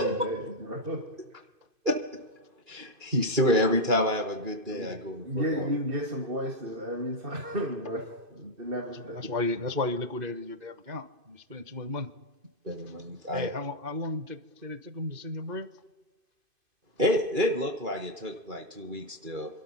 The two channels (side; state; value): left; late; 2.5 ms